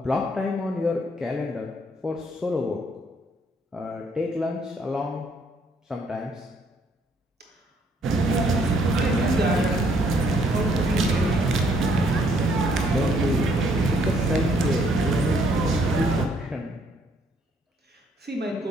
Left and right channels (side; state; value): both; normal; correlation 0.67